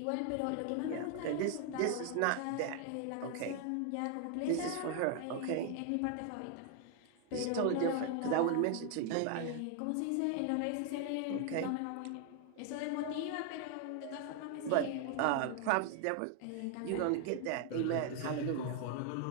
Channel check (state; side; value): different; both; correlation 0.00